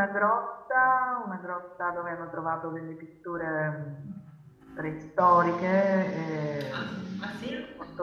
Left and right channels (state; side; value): identical; both; correlation 1.00